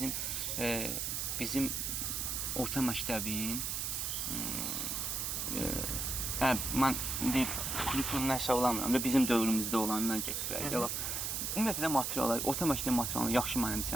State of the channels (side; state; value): right; noise; hiss, 1 dB below the sound